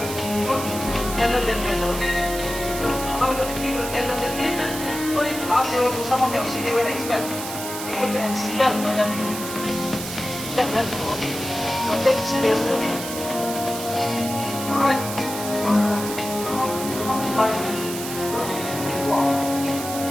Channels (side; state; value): right; noise; hiss, 8 dB below the sound